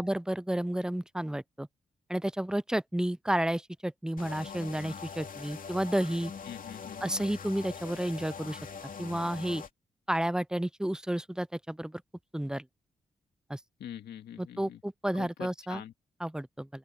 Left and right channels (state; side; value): normal; both; correlation 0.94